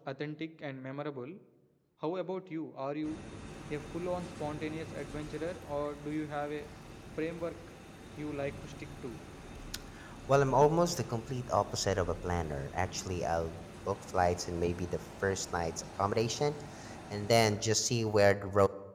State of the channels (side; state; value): both; identical; correlation 1.00